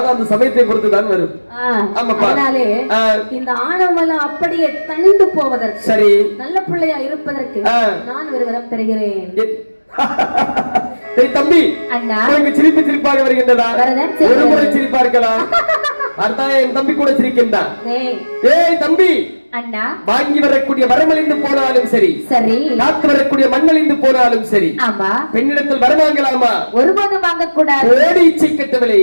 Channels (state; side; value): inverted; both; correlation -1.00